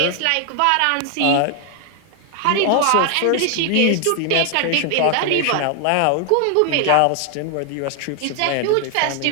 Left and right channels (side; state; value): both; different; correlation 0.00